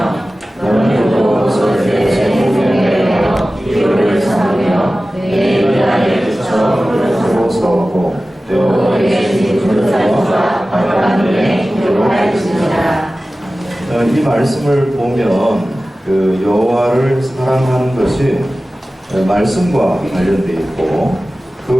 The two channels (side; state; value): both; normal; correlation 0.96